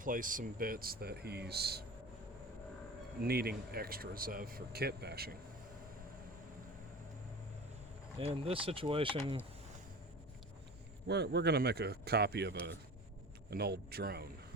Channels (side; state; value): both; normal; correlation 0.35